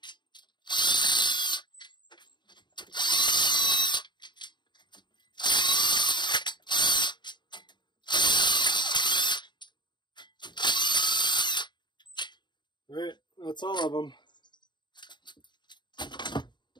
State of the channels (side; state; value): right; late; 0.22 ms